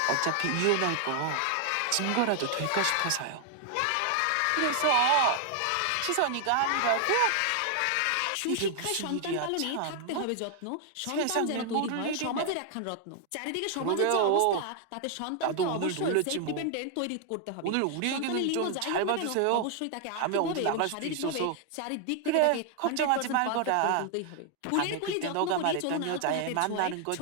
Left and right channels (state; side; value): different; both; correlation 0.00